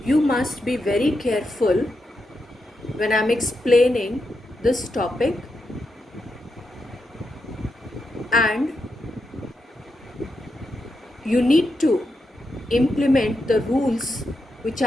you must be very careful when I'm explaining this topic, and you need to implement the rules which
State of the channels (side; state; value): both; normal; correlation 0.85